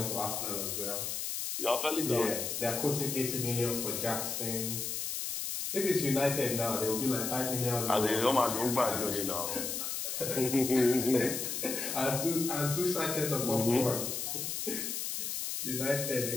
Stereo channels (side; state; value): left; noise; hiss, 3 dB below the sound